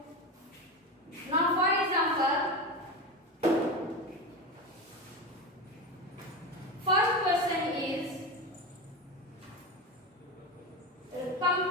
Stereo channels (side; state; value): both; normal; correlation 0.20